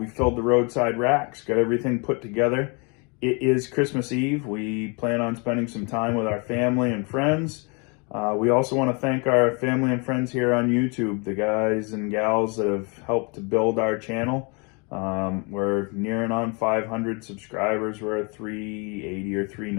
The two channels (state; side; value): quieter; right; 32.4 dB